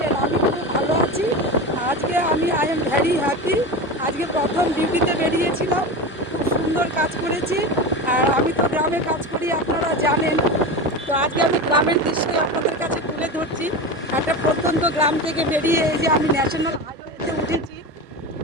আমি খুব ভালো আছি। আজকে আই এম ভ্যারি হ্যাপি। আজকে প্রথম ডিউটিতে বেরিয়েছিলাম, খুব সুন্দর কাজ করেছি। আর আমি তো গ্রামে কাজ করি, আপনারা জানেন। তো আজকে আমি গ্রামের দৃশ্যই আপনাদের কাছে তুলে ধরছি। একটা প্রত্যন্ত গ্রাম থেকে বেরিয়ে এই যে আমি ন্যাশনাল হাইওয়েতে উঠেছি,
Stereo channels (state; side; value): normal; both; correlation 0.24